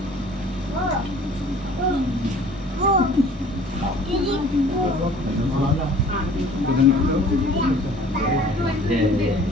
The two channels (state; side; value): normal; both; correlation 0.50